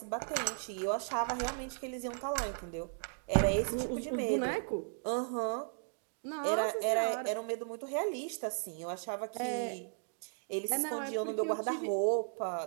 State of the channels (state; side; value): silent; left; digital silence